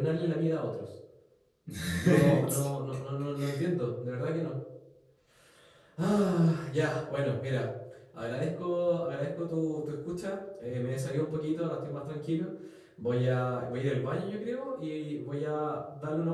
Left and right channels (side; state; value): both; identical; correlation 1.00